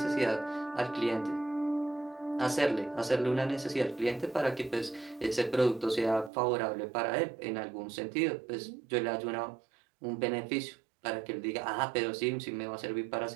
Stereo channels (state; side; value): drops out; left; at 6.3 s